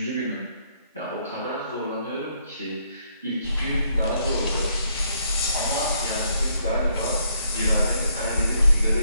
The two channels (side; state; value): both; inverted; correlation -0.72